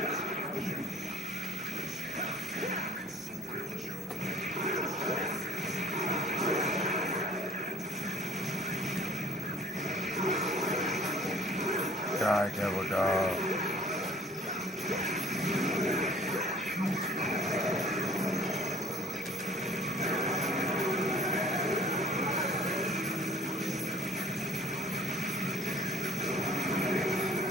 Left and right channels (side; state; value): both; normal; correlation 0.53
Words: die, devil dog.